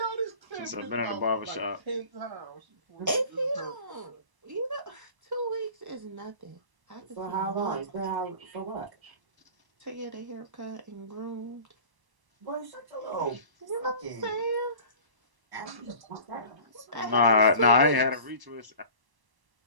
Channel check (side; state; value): left; late; 1.0 ms